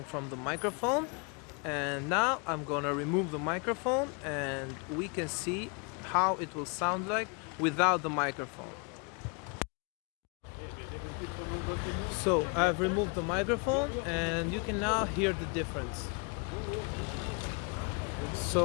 from the microphone, and now I'm gonna remove the microphone and we can see how it will sound like without the microphone. So I've removed the microphone and you can now hear the difference.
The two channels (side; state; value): right; quieter; 34.2 dB